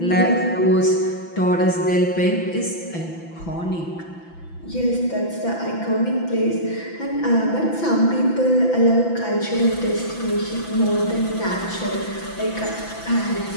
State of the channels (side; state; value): right; late; 5.9 ms